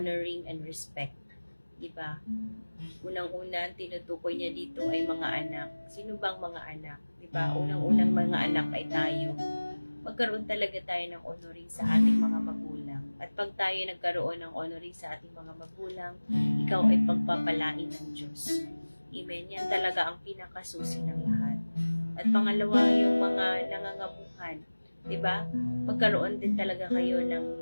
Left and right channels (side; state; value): both; inverted; correlation -1.00